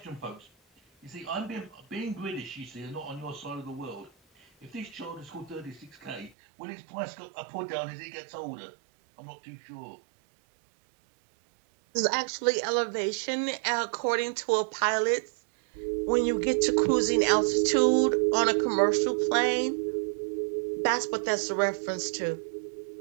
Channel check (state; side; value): drops out; left; at 6.3 s